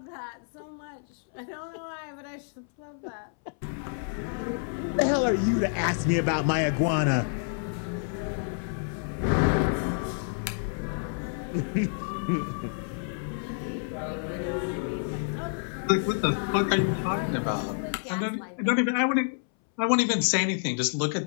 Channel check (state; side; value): silent; right; 59 dB below the other